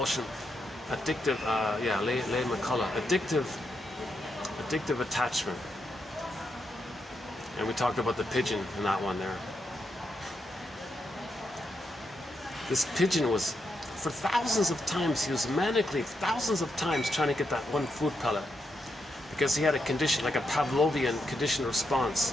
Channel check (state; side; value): normal; both; correlation 0.82